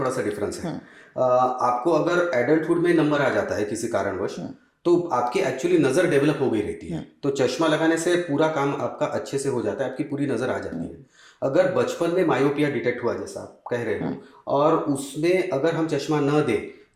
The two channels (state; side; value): identical; both; correlation 1.00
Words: सा डिफरेंस है। आपको अगर एडल्टहुड में नंबर आ जाता है किसी कारणवश, तो आपकी एक्चुअली नज़र डेवलप हो गई रहती है, तो चश्मा लगाने से पूरा काम आपका अच्छे से हो जाता है, आपकी पूरी नज़र आ जाती है। अगर बचपन में मायोपिया डिटेक्ट हुआ जैसा आप कह रहे हो और उसमें अगर हम चश्मा न दें